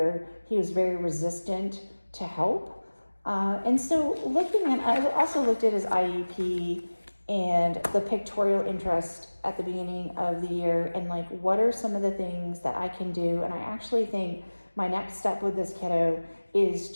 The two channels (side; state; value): both; inverted; correlation -1.00